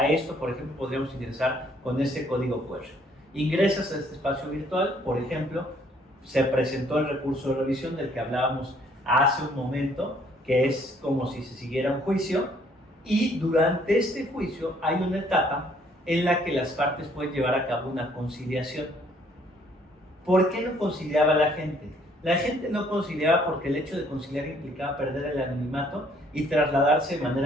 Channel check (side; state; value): both; normal; correlation 0.63